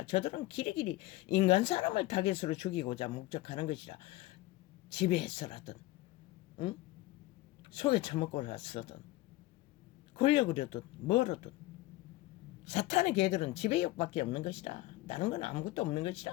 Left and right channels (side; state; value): right; quieter; 18.1 dB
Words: 저들은 길이길이 인간 사람을 타겟으로 죽이고자 목적하는 것이라. 지배해서라든 응? 속에 처먹고라서든 권력으로든 뭐로든 사탄의 개들은 지배욕밖에 없는 것이라. 다른 건 아무것도 없는